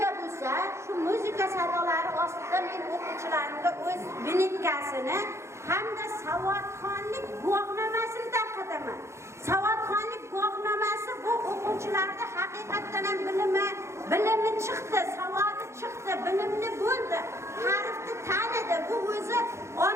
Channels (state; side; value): late; left; 0.13 ms